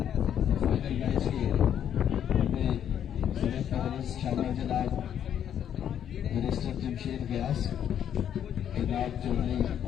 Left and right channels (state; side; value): quieter; right; 9.5 dB